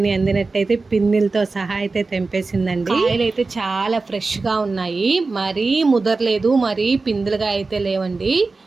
పిన్నిలతో సహా అయితే తెంపేసిందండి. కాయలు అయితే చాలా ఫ్రెష్గా ఉన్నాయి. మరీ ముదరలేదు, మరీ పిందులుగా అయితే లేవండి.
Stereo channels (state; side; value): quieter; left; 3.8 dB